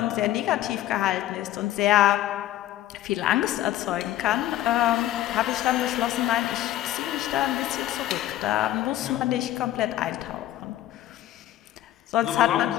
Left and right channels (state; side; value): quieter; right; 13.6 dB